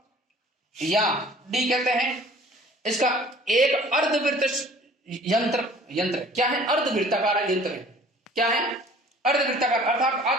या डी कहते हैं। इसका एक अर्धवृत्त यंत्र क्या है? अर्धवृत्ताकार यंत्र है। क्या है? अर्धवृत्ताकार, अर्थात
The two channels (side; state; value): both; normal; correlation 0.50